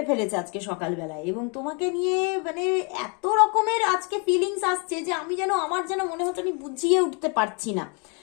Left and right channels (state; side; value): quieter; right; 35.1 dB